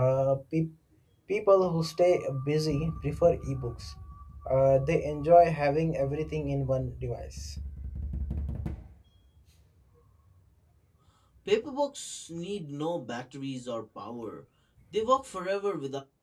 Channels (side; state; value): both; identical; correlation 1.00